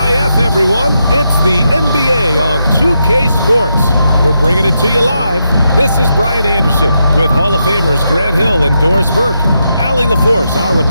TGIF, everyone. It's the NBA on 2K Sports. We're bringing it to you live. This is Brian Anderson with Hall of Famers Grant Hill and Doris Burke. Allie LaForce, our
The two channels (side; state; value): both; inverted; correlation -0.84